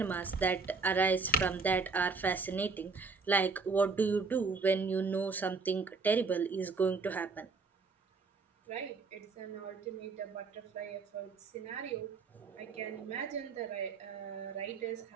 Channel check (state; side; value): quieter; left; 4.3 dB